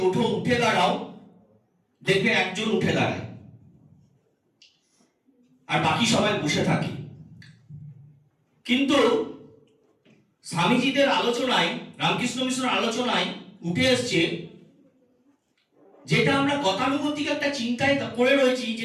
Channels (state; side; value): identical; both; correlation 1.00